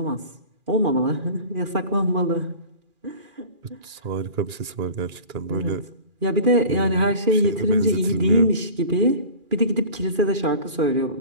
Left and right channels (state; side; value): late; left; 2.4 ms